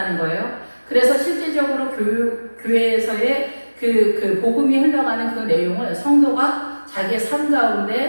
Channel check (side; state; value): both; inverted; correlation -1.00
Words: 거예요. 그래서 실제적으로 교회에서의 그 복음이 흘러가는 그 내용을 성도가 자기의 삶